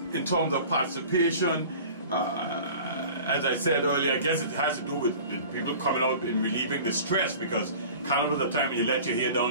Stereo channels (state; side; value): inverted; both; correlation -0.42